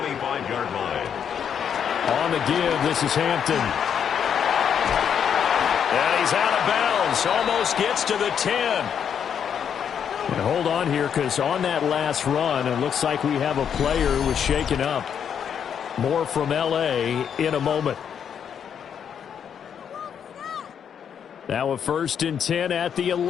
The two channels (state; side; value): quieter; right; 8.0 dB